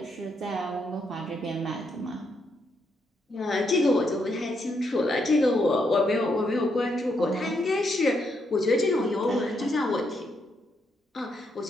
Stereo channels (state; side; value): normal; both; correlation 0.78